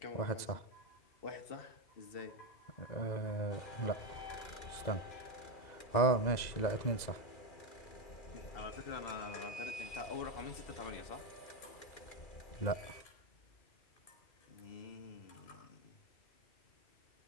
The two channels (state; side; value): late; right; 2.0 ms